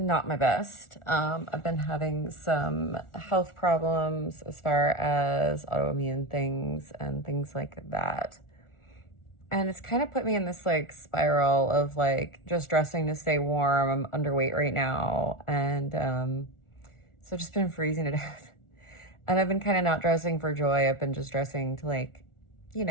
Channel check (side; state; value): right; late; 1.4 ms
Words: my best. I've been having some health problems as far as autoimmune things and things like that. And it's kind of put me in this like spiral of like just dressing to stay warm. I'm underweight right now. And so I've just been freezing to death. And I've been kind of not dressing for joy. I've been just dressing to like, you